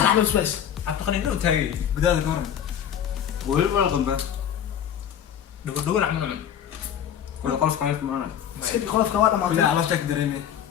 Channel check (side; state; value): right; quieter; 9.3 dB